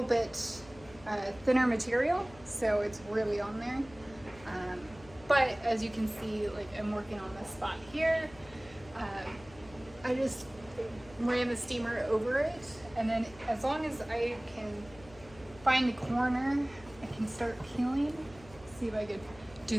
bit thinner material, so it's really on there. But as you can see, like I'm working on this spot here. I just ran the steamer over it, and then as long as I can find the corner, I can start peeling. See if I could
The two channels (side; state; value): left; noise; hum, 21 dB below the sound